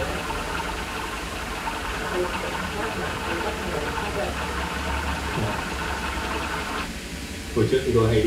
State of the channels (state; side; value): identical; both; correlation 1.00